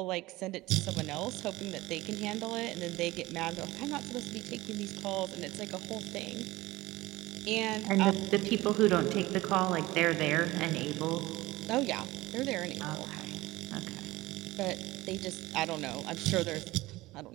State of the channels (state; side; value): quieter; left; 18.9 dB